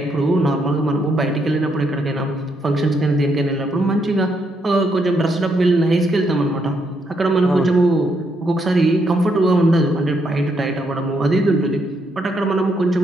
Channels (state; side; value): normal; both; correlation 0.76